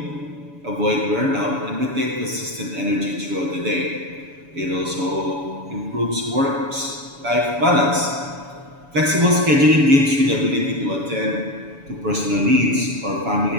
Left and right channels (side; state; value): left; late; 7.0 ms